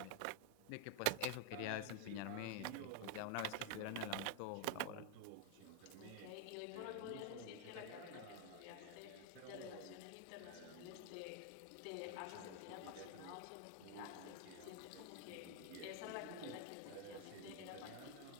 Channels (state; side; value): different; both; correlation 0.00